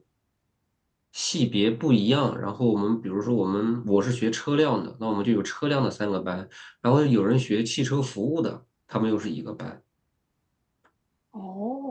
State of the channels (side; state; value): both; identical; correlation 1.00